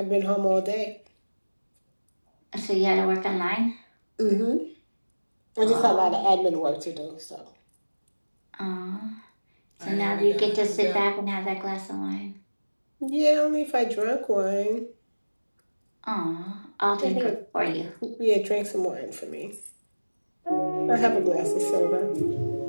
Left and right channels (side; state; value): both; inverted; correlation -1.00